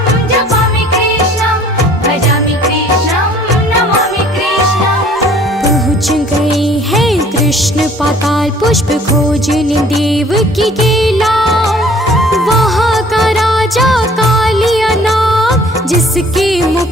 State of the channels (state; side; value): normal; both; correlation 0.54